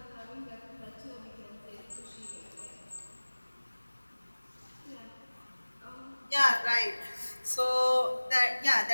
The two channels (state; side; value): inverted; both; correlation -1.00